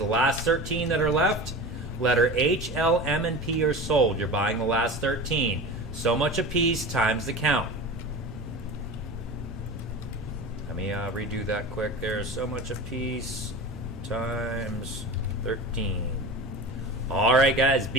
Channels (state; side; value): normal; both; correlation 0.32